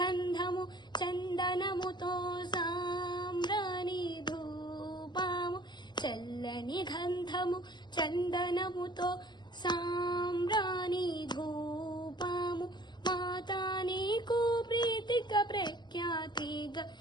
చందనముతో సాంబ్రాణి ధూపము చల్లని గంధము చందనముతో సాంబ్రాణి ధూపము మాతా నీకు ప్రీతిక ప్రఖ్యాతిగా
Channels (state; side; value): late; right; 0.21 ms